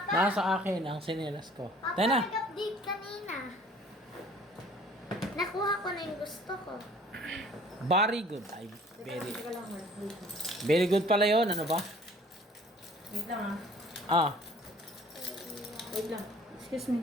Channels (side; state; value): both; normal; correlation 0.53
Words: Nasa akin ang sinelas ko. Papa, Tayo na. nag-update kanina. Nakuha ko na yung gusto ko. Very good. Ay, very good pala yun. Ano ba? Wait lang Ah, Wait lang. Excuse me.